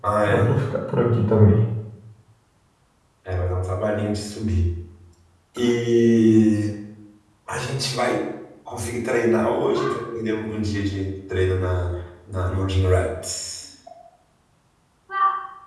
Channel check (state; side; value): identical; both; correlation 1.00